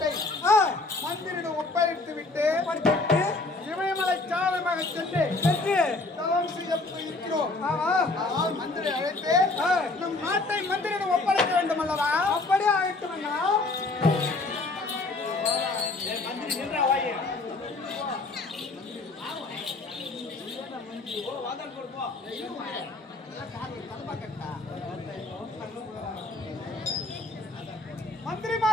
மந்திரிடம் ஒப்படைத்து விட்டு இமயமலை சாதமாக சென்று தவம் செய்ய இருக்கிறோம். ஆனால் மந்திரி அழைத்து நம் நாட்டை மந்திரிடம் ஒப்படைக்க வேண்டும் அல்லவா? அப்படியே அழைத்து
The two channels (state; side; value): quieter; right; 3.3 dB